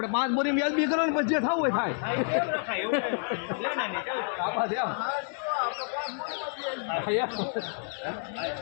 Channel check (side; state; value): right; silent; 58 dB below the other